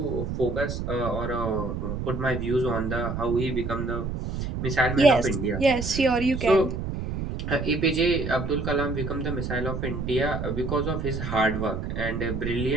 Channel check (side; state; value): right; noise; rumble, 4 dB below the sound